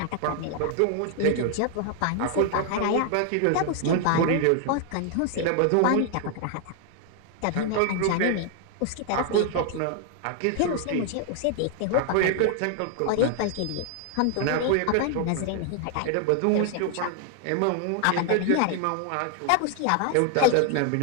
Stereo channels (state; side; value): different; both; correlation 0.00